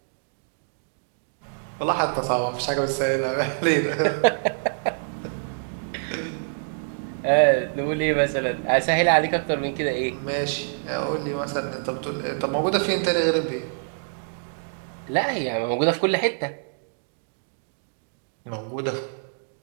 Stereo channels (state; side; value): silent; left; digital silence